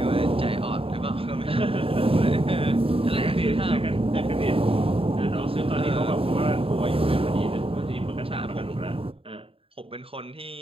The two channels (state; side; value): late; left; 0.27 ms